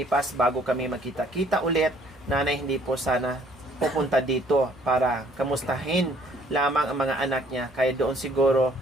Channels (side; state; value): both; normal; correlation 0.60